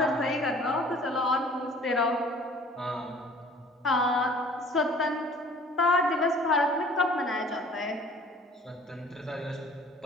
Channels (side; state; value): both; normal; correlation 0.51